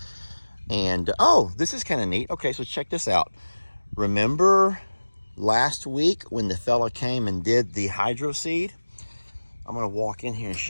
And oh, this is kind of neat. Okay, so check this out. Remember last week when the fella came and did the hydro seed? I'm gonna walk in here and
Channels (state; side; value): inverted; both; correlation -1.00